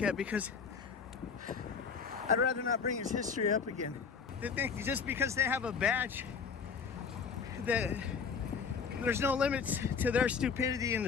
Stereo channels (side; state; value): right; quieter; 5.7 dB